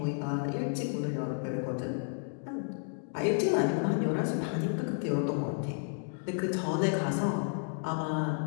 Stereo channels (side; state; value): right; silent; 57 dB below the other